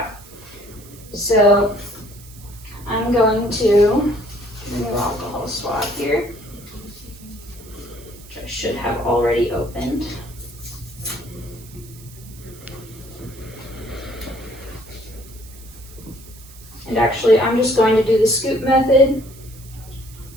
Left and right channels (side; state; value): right; noise; hiss, 20 dB below the sound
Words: So I'm going to do a new alcohol swab here, which I should have already opened. And actually, I'm just going to do the scoop method